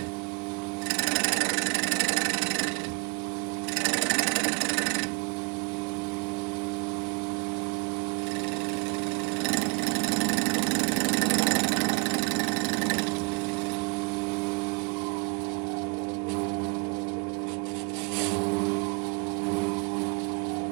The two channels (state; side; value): quieter; left; 31.7 dB